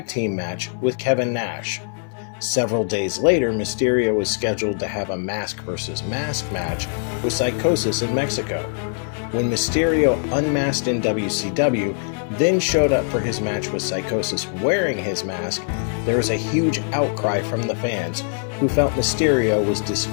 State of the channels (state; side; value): silent; right; 57 dB below the other